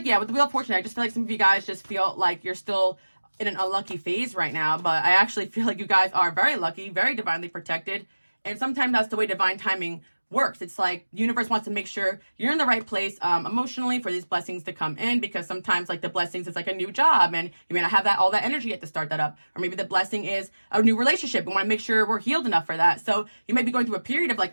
with the Wheel of Fortune, I just feel like some of you guys just feel like you're still in an unlucky phase right now. But I actually feel like you guys are very lucky, very divinely protected. And sometimes that's the way divine timing works. It's like the universe wants to make sure you're in the right place emotionally for these blessings to come in, because sometimes like the blessings is like a new job and you may not have all that energy yet to start that up. Or maybe the blessing is a new relationship. We want to make sure we're healed enough for that. So you may be going through a period of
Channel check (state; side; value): inverted; both; correlation -1.00